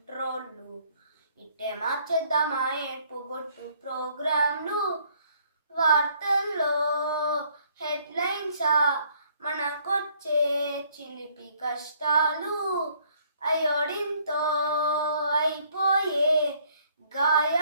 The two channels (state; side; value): inverted; both; correlation -0.63